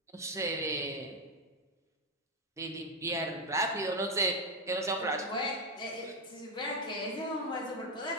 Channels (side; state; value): both; normal; correlation 0.05